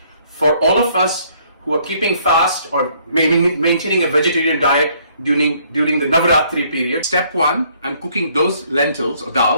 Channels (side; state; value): both; inverted; correlation -0.65